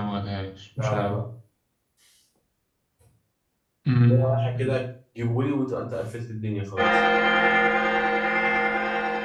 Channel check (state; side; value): identical; both; correlation 1.00